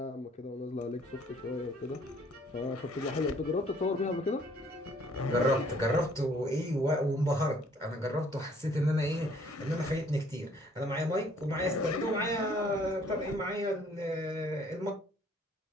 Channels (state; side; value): normal; both; correlation 0.60